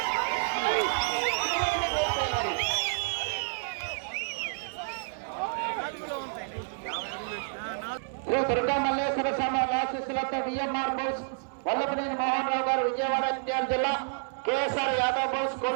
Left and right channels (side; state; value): left; silent; 58 dB below the other